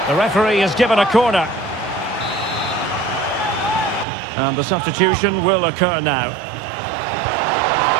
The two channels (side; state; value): left; drops out; at 4.0 s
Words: The referee has given a corner. And the substitution will occur now.